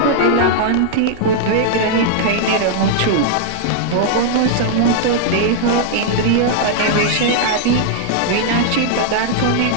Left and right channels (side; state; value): both; different; correlation -0.01